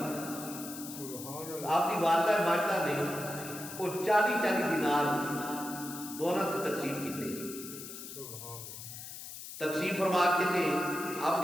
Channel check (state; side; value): noise; left; hiss, 11 dB below the sound